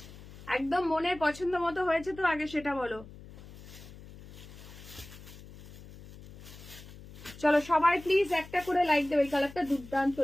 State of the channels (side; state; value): left; noise; hum, 17 dB below the sound